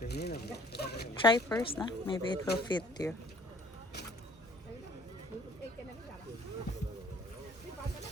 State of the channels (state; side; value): normal; both; correlation 0.56